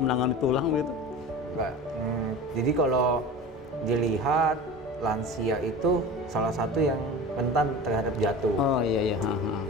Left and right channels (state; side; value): normal; both; correlation 0.34